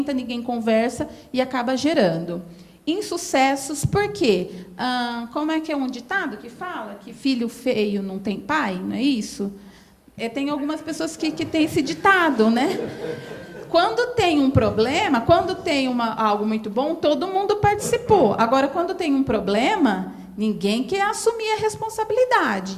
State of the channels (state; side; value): identical; both; correlation 1.00